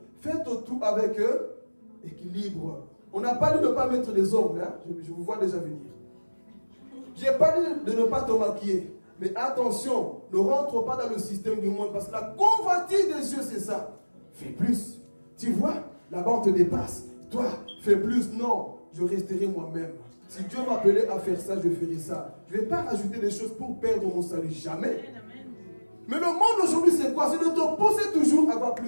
Faites tout avec équilibre. On n'a pas dit de ne pas mettre des ongles. Hein? Je vous vois déjà venir. Je n'ai pas dit de ne pas te maquiller. Mais attention, ne rentre pas dans le système du monde. Parce que la convoitise des yeux, c'est ça. Fais plus. Tu vois, là-bas on te dépasse. Toi, fais plus. Non, je resterai moi-même. Si Dieu m'appelait à faire ça, je ferai ça. Je ne vais pas rajouter des choses pour perdre mon salut. Jamais. Mais le monde aujourd'hui, c'est quoi? C'est de te pousser toujours à avoir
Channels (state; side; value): inverted; both; correlation -1.00